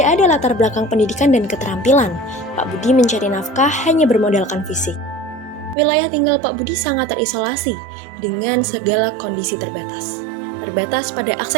ada latar belakang pendidikan dan keterampilan. Pak Budi mencari nafkah hanya bermodalkan fisik. Wilayah tinggal Pak Budi sangat terisolasi dengan segala kondisi terbatas. Terbatas pada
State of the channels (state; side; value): drops out; left; at 5.8 s